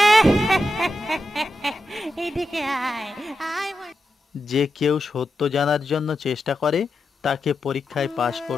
যে কেউ সত্য জানার জন্য চেষ্টা করে তাকে পরীক্ষায় পাশ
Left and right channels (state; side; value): normal; both; correlation 0.88